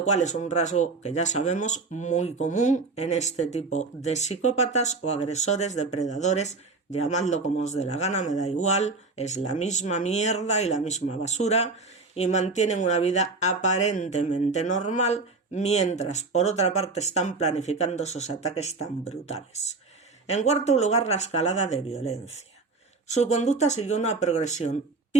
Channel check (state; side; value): quieter; left; 3.8 dB